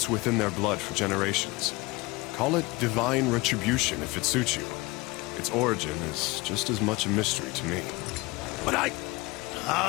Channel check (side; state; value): right; quieter; 23.1 dB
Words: within their blood for generations. Call it divine retribution if it suits you. Its origin is just as much a mystery to me. But